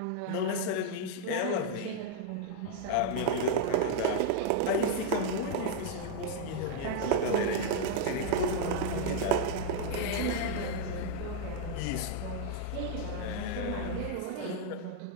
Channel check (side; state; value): both; different; correlation 0.00